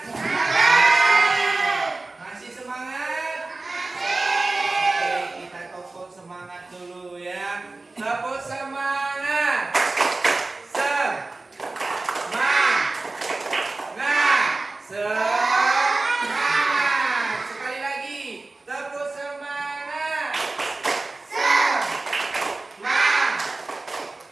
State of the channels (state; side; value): quieter; left; 3.3 dB